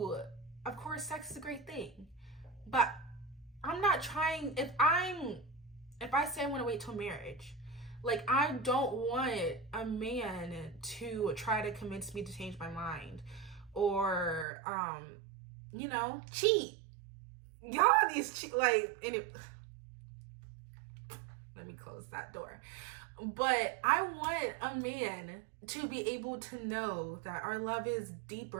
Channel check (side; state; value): left; drops out; at 14.5 s